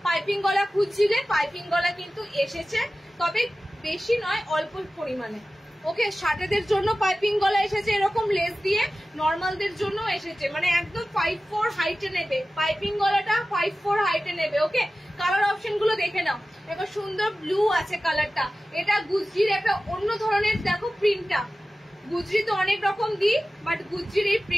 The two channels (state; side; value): normal; both; correlation 0.96